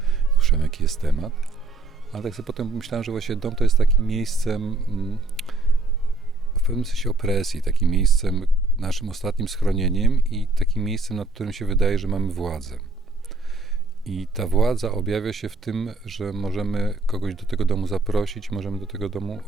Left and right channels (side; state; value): left; quieter; 3.2 dB